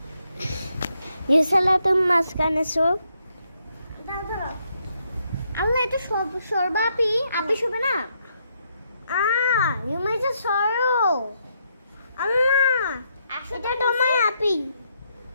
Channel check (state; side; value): inverted; both; correlation -0.77